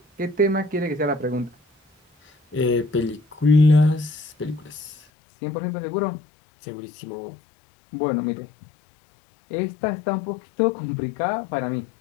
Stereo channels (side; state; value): right; drops out; at 5.0 s